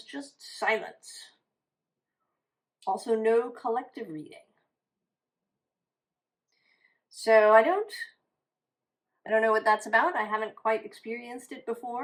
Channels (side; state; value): both; identical; correlation 1.00